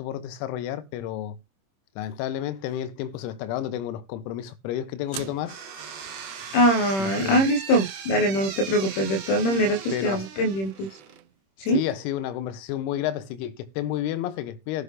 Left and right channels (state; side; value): late; right; 26 ms